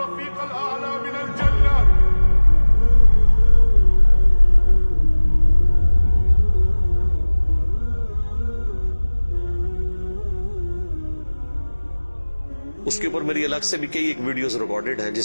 الاعلی من الجنہ. اس کے اوپر میری الگ سے بھی کئی ایک ویڈیوز ریکارڈڈ ہیں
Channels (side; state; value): both; inverted; correlation -1.00